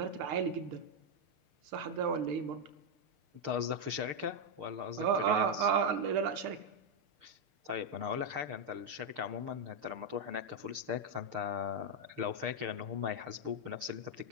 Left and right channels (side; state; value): left; late; 6.6 ms